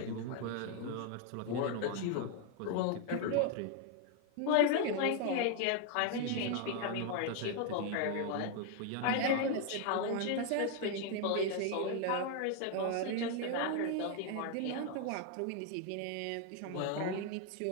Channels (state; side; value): different; both; correlation 0.01